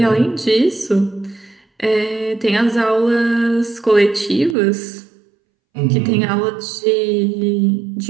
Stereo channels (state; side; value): drops out; left; at 4.5 s